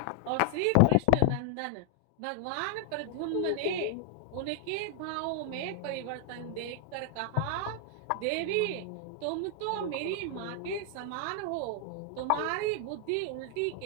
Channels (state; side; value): different; both; correlation 0.00